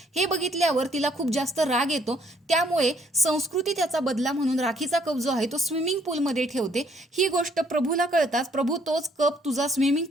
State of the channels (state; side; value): normal; both; correlation 0.66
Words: हे बघितल्यावर तिला खूप जास्त राग येतो. त्यामुळे संस्कृती त्याचा बदला म्हणून राखीचा कप जो आहे तो स्विमिंग पूलमध्ये ठेवते. ही गोष्ट प्रभूला कळताच प्रभू तोच कप तुझा स्विमिंग